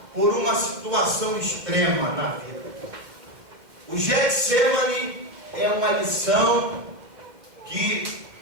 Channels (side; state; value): left; late; 2.2 ms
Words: por uma situação extrema na vida. O Getsemane é uma lição que